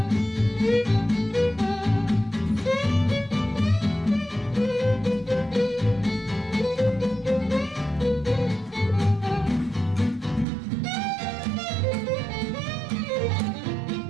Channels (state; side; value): drops out; left; at 10.5 s